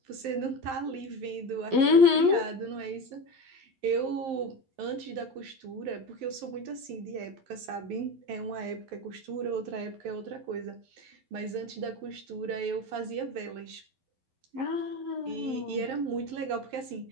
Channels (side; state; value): left; late; 11 ms